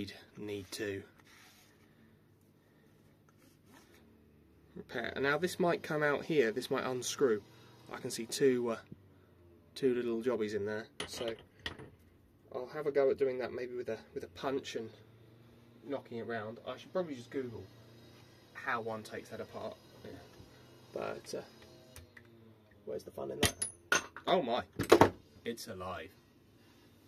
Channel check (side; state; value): both; identical; correlation 1.00